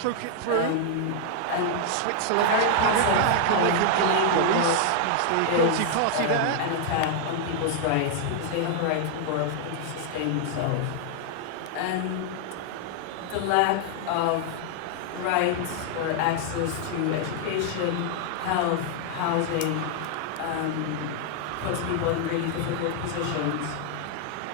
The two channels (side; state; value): both; different; correlation 0.00